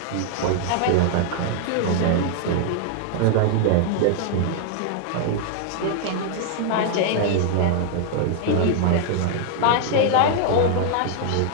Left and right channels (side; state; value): both; different; correlation -0.01